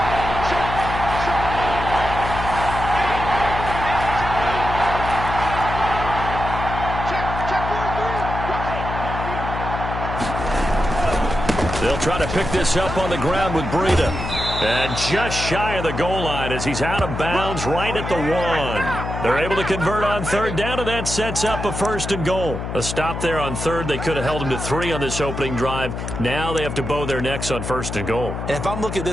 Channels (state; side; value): noise; left; hum, 5 dB below the sound